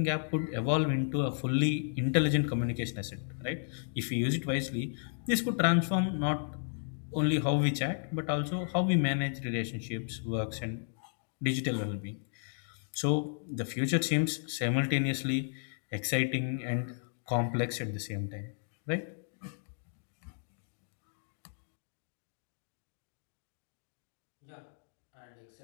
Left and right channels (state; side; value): silent; right; digital silence